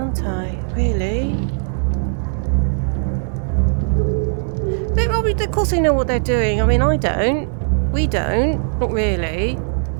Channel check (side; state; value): left; silent; digital silence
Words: I? Really? Of course they know what they're doing. I mean, I don't. We don't. Not really.